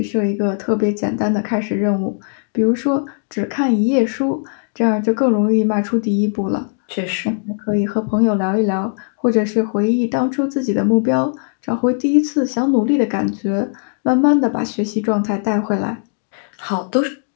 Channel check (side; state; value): right; silent; digital silence